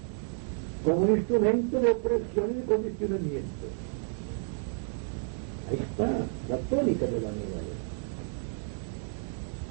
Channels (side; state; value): left; silent; 57 dB below the other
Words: como un instrumento de opresión y de condicionamiento. Ahí está la tónica de la nueva era.